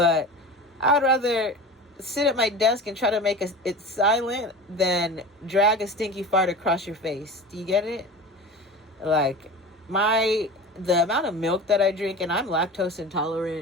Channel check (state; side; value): normal; both; correlation 0.33